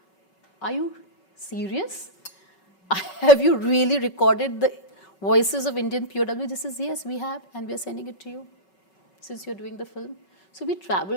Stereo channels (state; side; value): late; right; 5.3 ms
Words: are you serious? Have you really recorded the voices of Indian POW? This is, yes, we have, and we are sending it to you since you're doing the film. So we